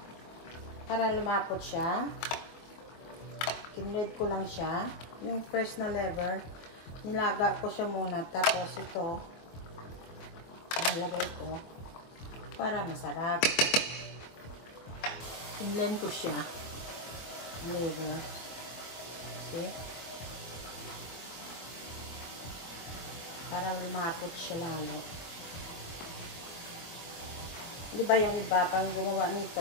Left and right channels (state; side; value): late; right; 24 ms